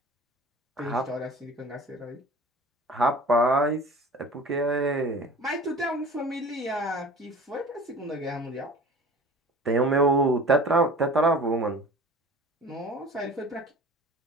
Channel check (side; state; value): both; normal; correlation 0.41